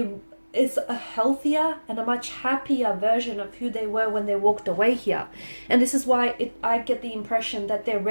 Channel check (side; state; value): both; inverted; correlation -1.00